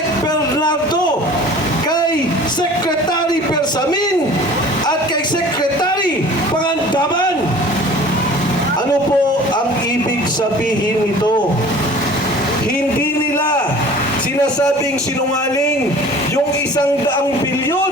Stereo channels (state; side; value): normal; both; correlation 0.45